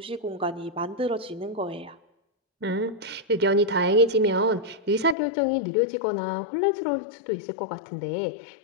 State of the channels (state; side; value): drops out; right; at 5.2 s